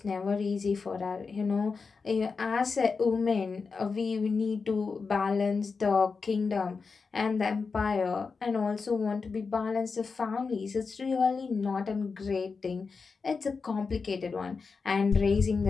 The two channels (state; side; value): quieter; right; 4.8 dB